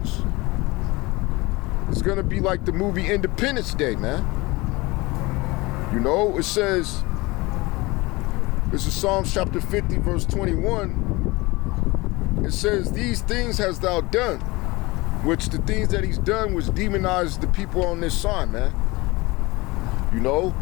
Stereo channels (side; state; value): right; quieter; 22.7 dB